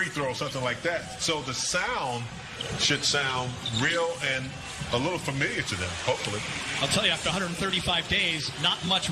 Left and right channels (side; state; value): both; identical; correlation 1.00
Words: throw or something like that. So the sound should sound real and a little familiar to them, hopefully. I'll tell you, after 135 days, not much